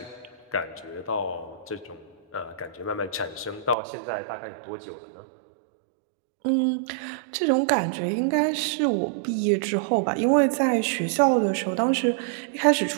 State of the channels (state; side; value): drops out; left; at 3.8 s